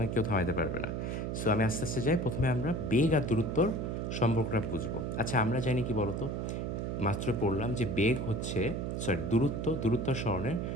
কেউ থামাইতে পারবে না। সো আমি আস্তে আস্তে যাই, প্রথমে আমরা বেগ আর দূরত্বর সম্পর্কটা বুঝবো। আচ্ছা, আমরা জানি কি বলতো, মাত্র পড়লাম যে বেগ হচ্ছে, দূরত্ব আর সরণের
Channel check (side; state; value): right; noise; hum, 2 dB below the sound